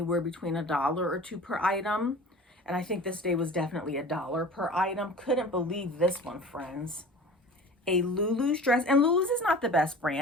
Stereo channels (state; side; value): normal; both; correlation 0.40